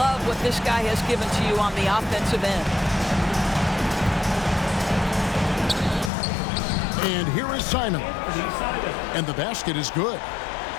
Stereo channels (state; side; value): drops out; right; at 6.1 s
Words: what this guy has given to you on the offensive end. And here is Simon. And the basket is good.